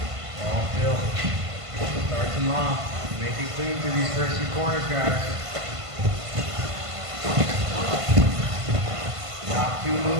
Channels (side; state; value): left; late; 1.5 ms